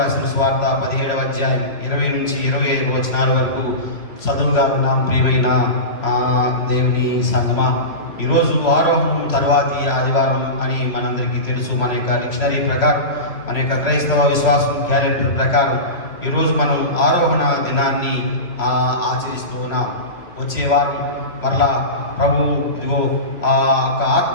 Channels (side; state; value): right; late; 2.9 ms